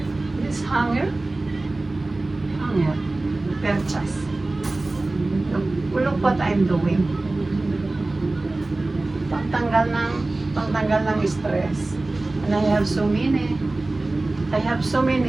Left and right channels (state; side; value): quieter; left; 3.0 dB